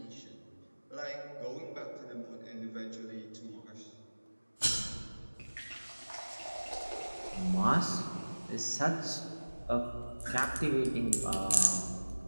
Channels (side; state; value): both; inverted; correlation -1.00